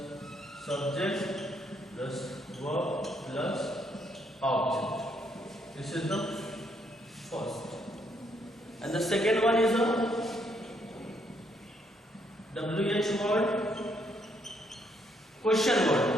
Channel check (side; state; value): both; normal; correlation 0.72